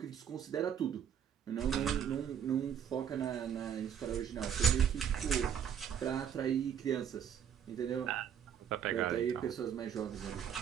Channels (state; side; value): quieter; left; 8.6 dB